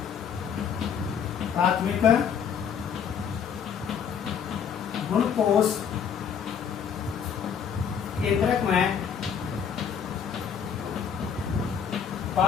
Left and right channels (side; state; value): right; quieter; 7.5 dB